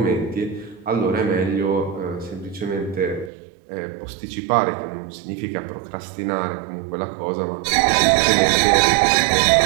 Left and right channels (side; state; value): left; drops out; at 3.3 s